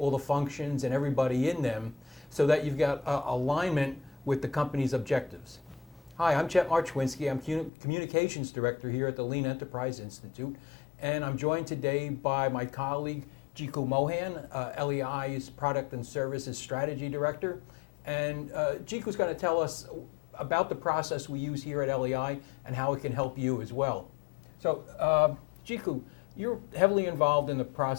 the functions and everybody in them so that you've got alignment with the company's objectives? Hi, I'm Chet Marchwinski. I'm Communications Director here at the Lean Enterprise Institute, and I'm joined today by my colleague, Jiku Mohan, LEI's Product and Services Strategy Director. And Jiku's going to tell us about the process we use here at LEI and how it can help you as well. So, Jiku, you're heavily involved in the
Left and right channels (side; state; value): right; drops out; at 7.7 s